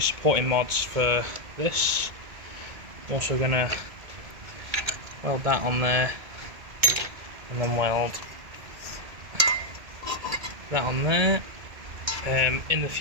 mods for this. Also going to weld that on there and then weld that on there. In the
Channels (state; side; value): late; left; 2.2 ms